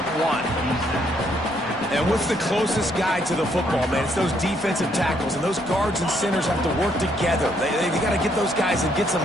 1. And what's the closest guy to the football, man? It's those defensive tackles, and those guards and centers have to work together. They got to get those guys and get some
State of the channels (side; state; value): right; noise; rumble, 26 dB below the sound